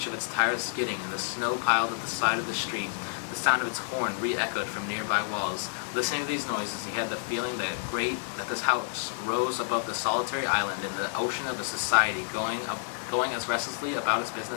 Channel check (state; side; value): silent; right; digital silence